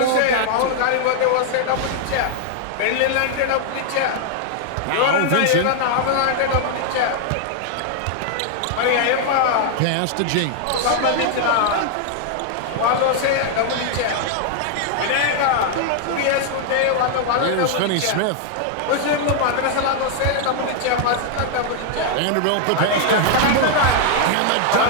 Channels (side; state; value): both; different; correlation 0.00